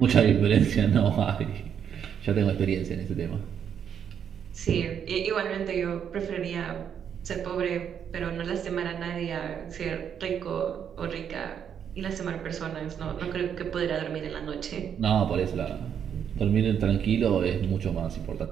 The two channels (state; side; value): quieter; left; 8.3 dB